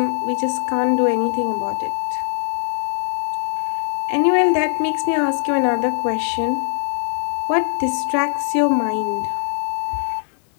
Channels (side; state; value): right; silent; 65 dB below the other